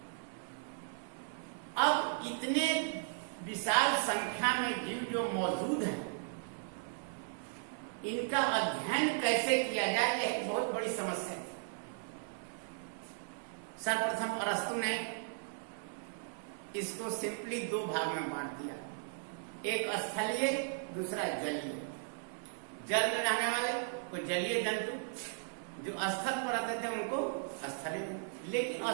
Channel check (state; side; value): silent; left; digital silence